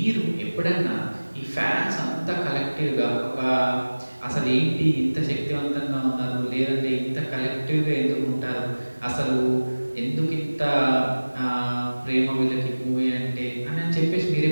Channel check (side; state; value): both; inverted; correlation -1.00